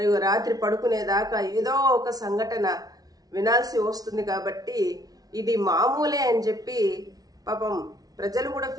రాత్రి పడుకునేదాకా ఏదో ఒక సంఘటన వినాల్సి వస్తుంది. కాబట్టి ఇది మామూలే అని చెప్పి పాపం ప్రజలు కూడా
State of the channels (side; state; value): left; late; 0.18 ms